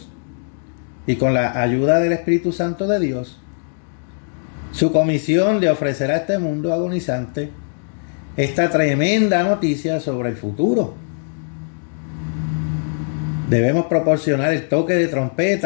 y con la ayuda del Espíritu Santo de Dios, su comisión de ofrecer a este mundo agonizante esta tremenda noticia sobre el futuro. Debemos proporcionar el toque de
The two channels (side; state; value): right; silent; digital silence